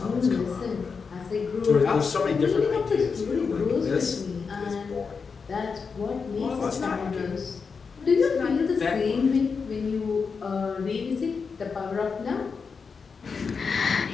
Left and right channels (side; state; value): right; quieter; 5.3 dB